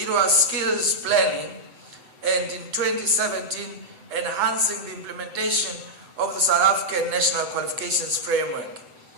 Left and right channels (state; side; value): late; left; 7.9 ms